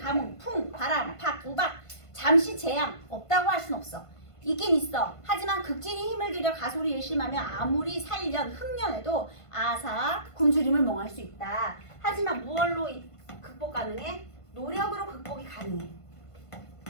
풍, 바람, 박, 우박 잠시 재앙 없다고 할 순 없어. 있긴 있어. 하지만 극진히 힘을 들여 가소리 일심하며 아무리 살년, 흑년에도 아사, 굶주림을 멍할 수 있다. 하지만 무얼로 극복 가능해? 노력으로 극복이 가능해.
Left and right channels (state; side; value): late; right; 1.5 ms